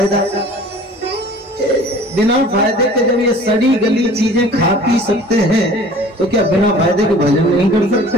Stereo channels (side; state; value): both; normal; correlation 0.47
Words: बिना फायदे के जब ये सड़ी गली चीजें खा पी सकते हैं, तो क्या बिना फायदे के भजन नहीं कर